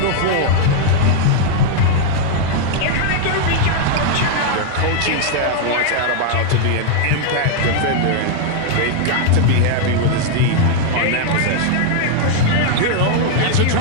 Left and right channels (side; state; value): both; different; correlation 0.00